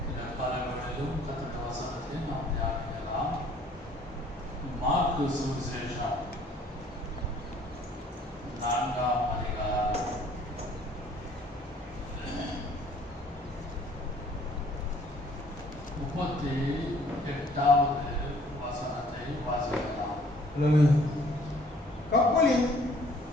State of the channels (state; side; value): normal; both; correlation 0.58